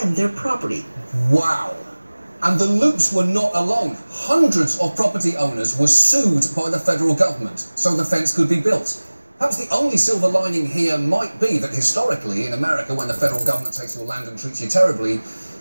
their property. Wow. And the loops were not alone. Hundreds of property owners were sued by the federal government so the fence could be built. Perhaps the only silver lining here might be that historically in America, when the federal government takes your land and treats you terribly,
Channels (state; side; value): inverted; both; correlation -1.00